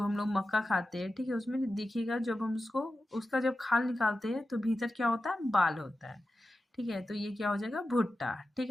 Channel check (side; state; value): both; normal; correlation 0.93